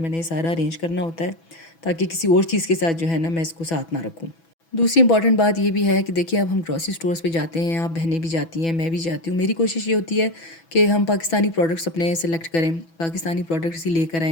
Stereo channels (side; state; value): right; late; 6.1 ms